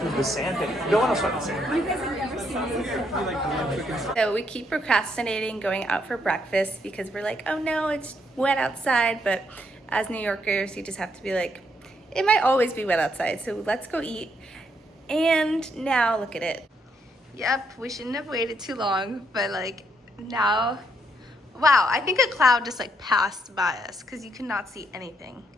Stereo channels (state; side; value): normal; both; correlation 0.75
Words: The sand thing. No one else went the sand. You guys have never seen this. So we keep procrastinating going out for breakfast because we're like, oh no, it's wet outside. But as New Yorkers, you just have to be like, it might always be wet outside, so let's go eat. And now look at it. Yep, we shouldn't have waited too long, but like now, wow, I think a cloud just like passed by us because you could not see anything.